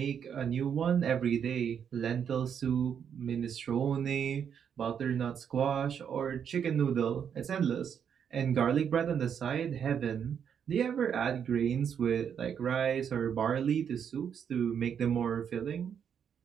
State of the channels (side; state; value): left; quieter; 7.9 dB